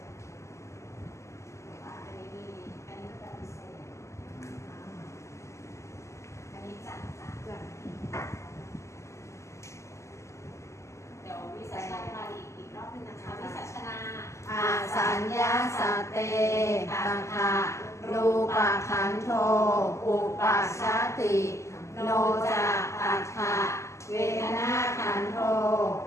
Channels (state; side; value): late; right; 0.14 ms